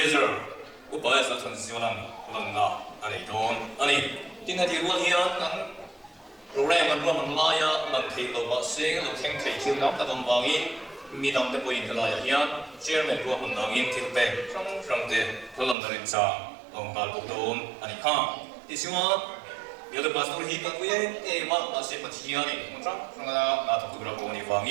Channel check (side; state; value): left; drops out; at 15.8 s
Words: upaya sa thon siwalan lanna ani don ani tin ha tirwa hian kan program kan ruam la ya man thei lo ba se lo theng thei thil nam ta dom bangin mi dam te poin la ya hian chairman ruam nangin thilpe trong te tholam darin cha ong bal don ani kha ti siwa biar pastor hidup gue, masih percaya nih, macam kalau nak tu berapa ni